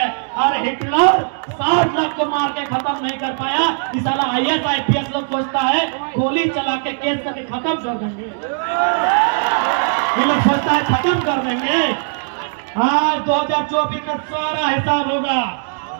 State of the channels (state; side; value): silent; left; 67 dB below the other